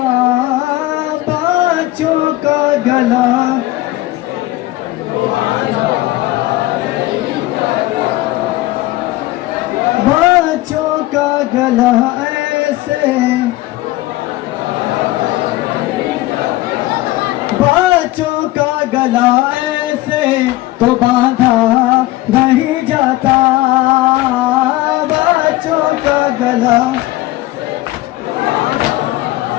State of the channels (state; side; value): quieter; right; 17.7 dB